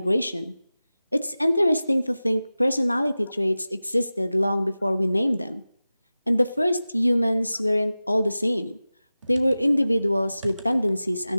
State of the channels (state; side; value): inverted; both; correlation -0.96